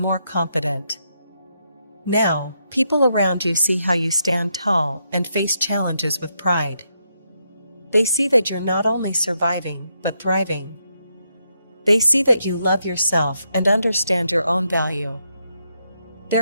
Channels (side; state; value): both; inverted; correlation -0.80